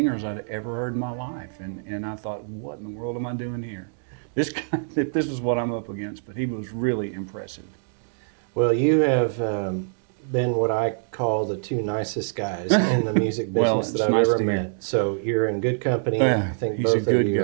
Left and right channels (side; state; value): left; silent; digital silence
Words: I'd ever heard in my life. And I thought, what in the world am I doing here? This guy, this is what I'm up against. But he was really impressive. Well, you have been what I call the two nicest guys in the music business that I've ever met. So you're in good company. I think both of you